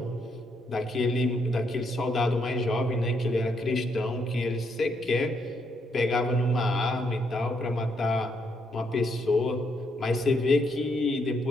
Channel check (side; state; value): both; normal; correlation 0.75